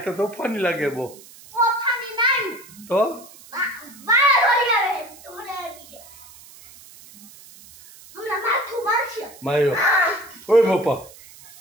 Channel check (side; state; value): right; noise; hiss, 21 dB below the sound